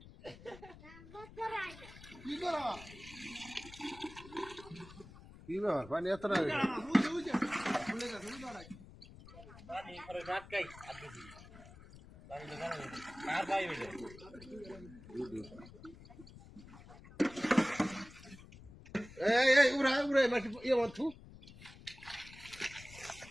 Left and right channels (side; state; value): left; noise; rumble, 18 dB below the sound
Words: কি ব্যাপার, পানি এত না উড়াই উড়াই মাটি ইয়ে মতো